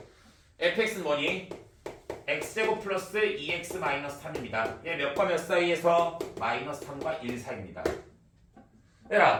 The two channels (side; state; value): both; identical; correlation 1.00